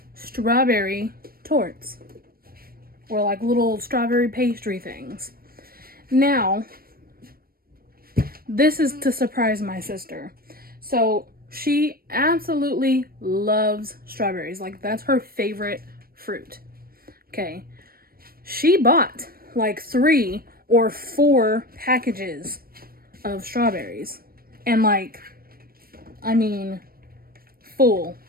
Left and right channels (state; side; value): late; left; 0.43 ms